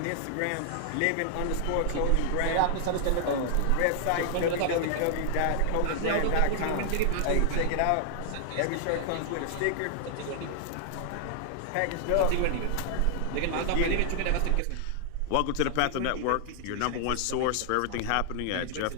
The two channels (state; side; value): different; both; correlation 0.00